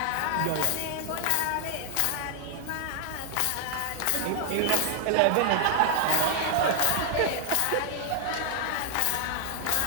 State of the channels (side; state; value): both; different; correlation 0.00